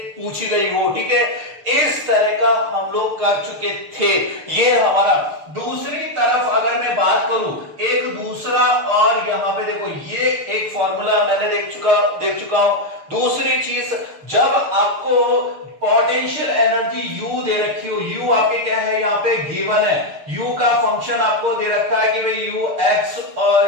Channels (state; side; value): late; left; 6.7 ms